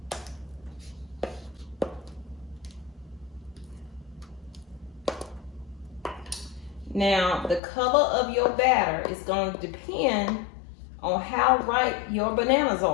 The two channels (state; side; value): drops out; right; at 7.6 s